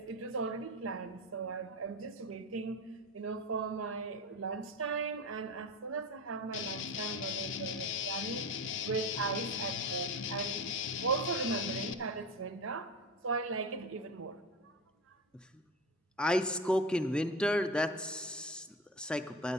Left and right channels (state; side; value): normal; both; correlation 0.26